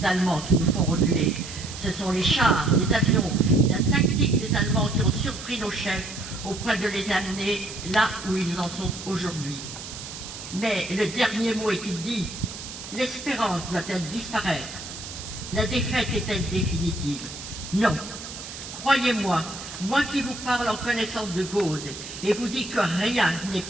Allemands qui nous font reculer. Ce sont les chars, les avions, la tactique des Allemands qui ont surpris nos chefs au point de les amener là où ils en sont aujourd'hui. Mais le dernier mot est-il dit? L'espérance doit-elle disparaître? La défaite est-elle définitive? Non. Croyez-moi, moi qui vous parle en connaissance de cause et vous dis que rien n'est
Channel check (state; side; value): noise; right; hiss, 11 dB below the sound